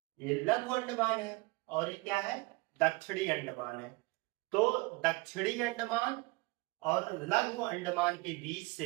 ये लघु अंडमान है, और ये क्या है? दक्षिणी अंडमान है। तो दक्षिणी अंडमान और लघु अंडमान के बीच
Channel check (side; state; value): left; quieter; 24.6 dB